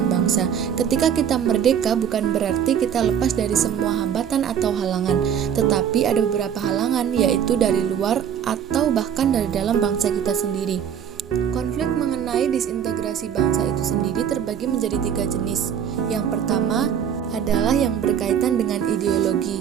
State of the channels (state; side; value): quieter; left; 8.6 dB